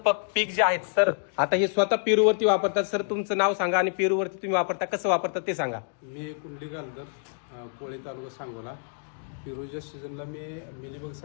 पीक जे आहेत सर, आता हे स्वतः पेरूवरती वापरतात. सर तुमचं नाव सांगा आणि पेरूवरती तुम्ही वापरता, कसं वापरता ते सांगा. मी कुंडली गालदर, कोळे तालुका सांगोला. पेरूच्या सीझनला मी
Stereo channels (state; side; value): silent; right; digital silence